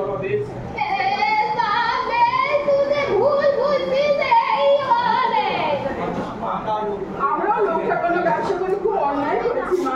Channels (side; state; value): both; identical; correlation 1.00